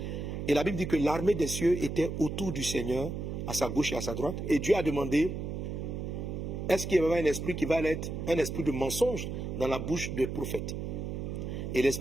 Et la Bible dit que l'armée des cieux était autour du Seigneur, à sa gauche et à sa droite. Et Dieu a demandé, est-ce qu'il y avait un esprit qui va être un esprit de mensonge dans la bouche des prophètes? Et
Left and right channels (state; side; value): noise; right; hum, 5 dB below the sound